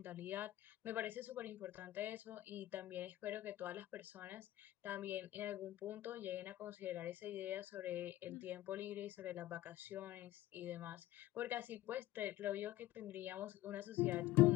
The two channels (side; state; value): right; quieter; 15.4 dB